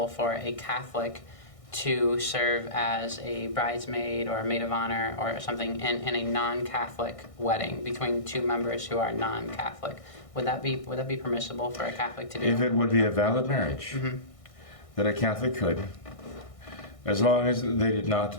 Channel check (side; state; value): right; late; 1.6 ms